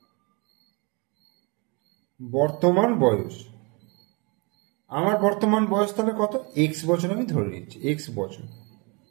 বর্তমান বয়স, আমার বর্তমান বয়স তাহলে কত? এক্স বছর আমি ধরে নিচ্ছি, এক্স বছর,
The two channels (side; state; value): left; quieter; 30.7 dB